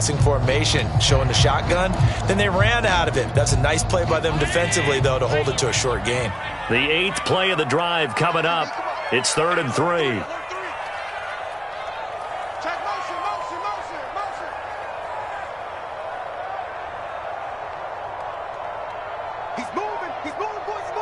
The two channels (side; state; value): both; identical; correlation 1.00